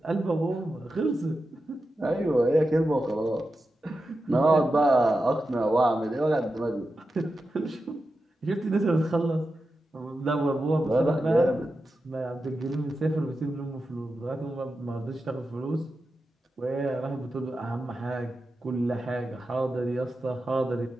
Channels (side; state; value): both; normal; correlation 0.90